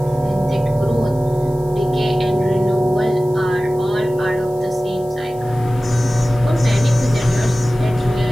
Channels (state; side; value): noise; left; hiss, 25 dB below the sound